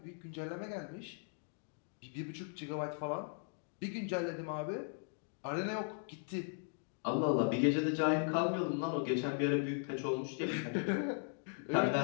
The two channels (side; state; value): right; silent; 52 dB below the other